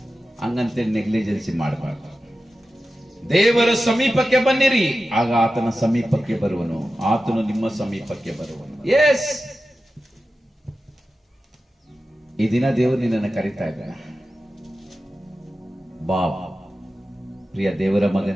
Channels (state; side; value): normal; both; correlation 0.93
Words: ಹಂಗಂತೆ ನೆಗ್ಲಿಜೆನ್ಸಿ ಮಾಡಬಾರ್ದು. ದೇವರ ಸಮೀಪಕ್ಕೆ ಬನ್ನಿರಿ, ಆಗ ಆತನ ಸಮೀಪಕ್ಕೆ ಬರುವನು, ಆತನು ನಿಮ್ಮ ಸಮೀಪಕ್ಕೆ ಬರುವನು. ಎಸ್, ಈ ದಿನ ದೇವರು ನಿನ್ನನ್ನು ಕರೀತಾ ಇದ್ದಾನೆ. ಬಾ ಪ್ರಿಯ ದೇವರ